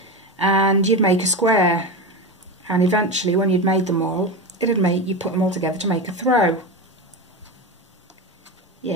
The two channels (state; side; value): normal; both; correlation 0.19